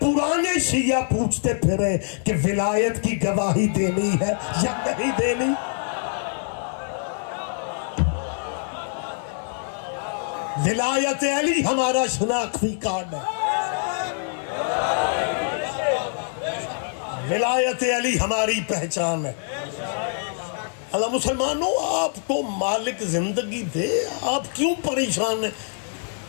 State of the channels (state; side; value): silent; right; 62 dB below the other